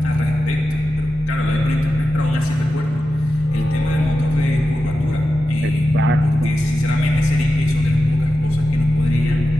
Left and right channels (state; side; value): normal; both; correlation 0.91